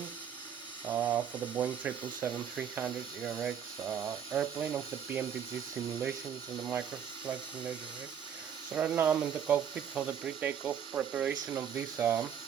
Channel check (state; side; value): quieter; left; 8.3 dB